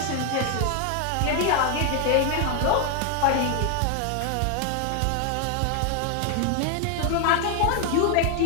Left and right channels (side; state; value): both; different; correlation 0.00